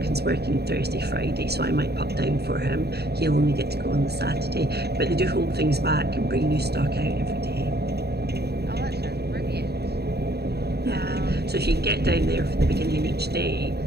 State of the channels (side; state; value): left; late; 0.47 ms